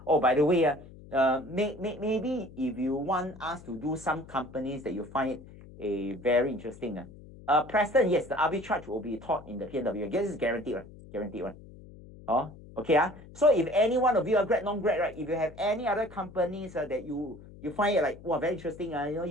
Oh, by the way, maybe if you want us to do some companies that you find very interesting. Preston, yes, the arbitrage will be taught in the PNW. I guess it's guaranteed, right? Guaranteed, right? Oh, okay. So if any one of you are grad, non-grad, right? If you have any other companies that you find it like, wow, very interesting,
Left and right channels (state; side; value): noise; left; hum, 19 dB below the sound